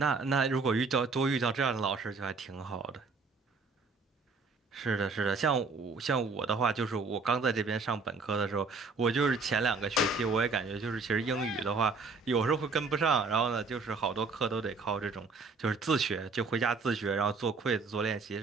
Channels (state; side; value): quieter; left; 4.2 dB